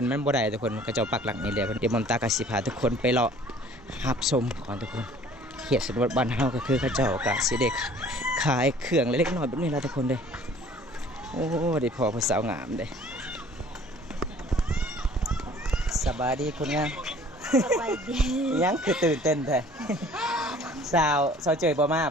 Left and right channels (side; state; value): both; normal; correlation 0.52